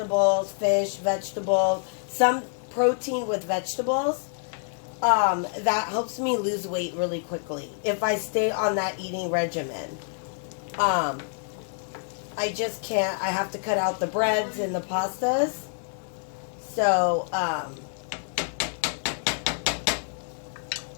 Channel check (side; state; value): right; silent; 60 dB below the other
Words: fish, vegetables, some protein with vegetables, that helps me lose weight really quickly if I stay on that eating regimen. I just can't. I have to cut out the breads and the pastas. So,